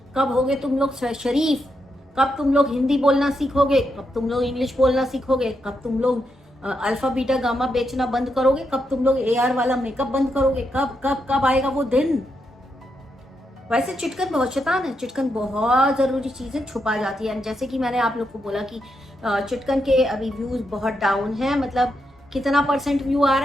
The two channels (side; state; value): both; normal; correlation 0.82